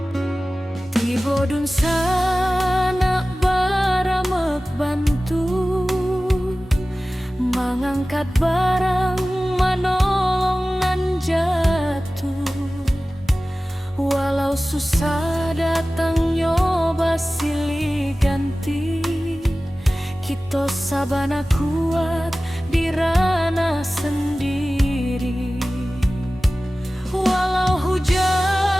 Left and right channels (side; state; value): both; normal; correlation 0.97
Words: Bodun sana baramek bantu mengangkat barang manolongan jatuh. Walau susah datang nyoba silih ganti, kita sabana kuat di ranah sendiri. Walau